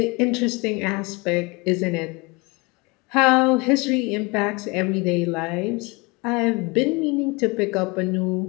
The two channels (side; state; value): right; quieter; 26.6 dB